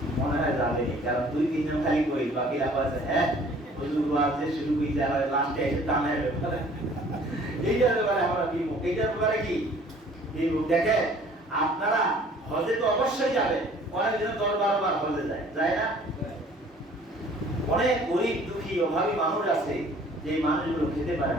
মনে হয় যাবে, কারণ 2-3 জন খালি কই, বাকিরা বলছে হ্যাঁ হুজুর ওয়াজে শুরু কইতে হয়, লাস্টে এসে টানে ব্যাপারে এইটার ব্যাপারে আমরা বিমুখ। এইটার ব্যাপারে কি বিমুখ? দেখেন, আপনারা হজে তো অবশ্যই যাবেন, অনেক দিন 10-12 বার হজে যায় না? অনেক গরিব দুঃখী অভাবী মানুষ আছে, যে মানুষগুলো খেতে পারে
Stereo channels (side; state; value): both; normal; correlation 0.53